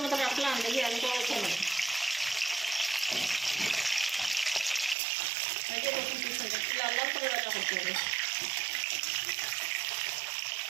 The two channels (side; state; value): left; drops out; at 5.0 s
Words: মতো রাখলাম, দেখি আমি তো ওইখানে লাল করে রান্না করতে হবে।